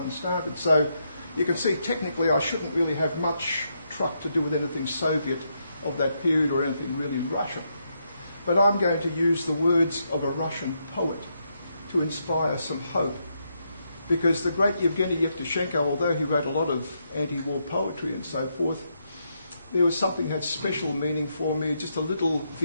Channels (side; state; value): both; inverted; correlation -0.80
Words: started. So you can see technically I shouldn't really have much truck to do with anything Soviet of that period or anything really Russian. But I'm going to use the words of a Russian poet to inspire some hope. Because the great Yevgeny Yevtushenko, although he wrote a lot of anti-war poetry and so forth, there was something that had special meaning for me, just a little